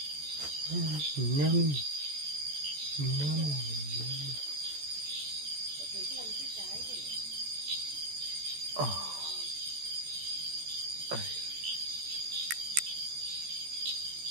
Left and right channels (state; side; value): late; left; 14 ms